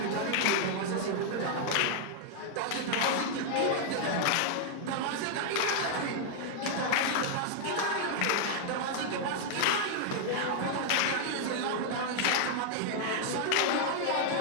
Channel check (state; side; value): different; both; correlation -0.01